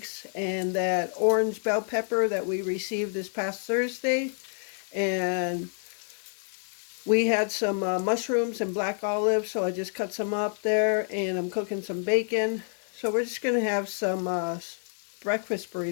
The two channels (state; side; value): silent; right; 59 dB below the other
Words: and that orange bell pepper that we received this past Thursday. And we had some mushrooms and black olives, so I just cut some up there, and I'm cooking some bacon. So we're just gonna have some breakfast